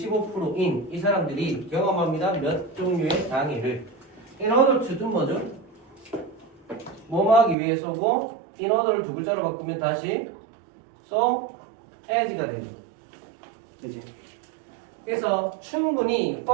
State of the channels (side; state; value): left; drops out; at 7.6 s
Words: 이 사람들이 경험합니다. 몇 종류의 장애를. In order to do 뭐죠? 뭐뭐 하기 위해서고 in order를 두 글자로 바꾸면 다시 so as가 되죠. 그치? 그래서 충분히